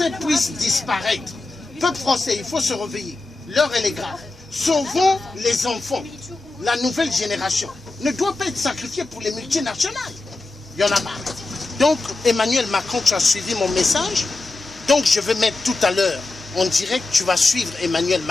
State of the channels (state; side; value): quieter; right; 3.2 dB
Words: puisse disparaître. Peuple français, il faut se réveiller. L'heure, elle est grave. Sauvons les enfants. La nouvelle génération ne doit pas être sacrifiée pour les multinationales. Il y en a marre. Donc, Emmanuel Macron, tu as suivi mon message. Donc, je vais mettre tout à l'heure en direct, tu vas suivre Emmanuel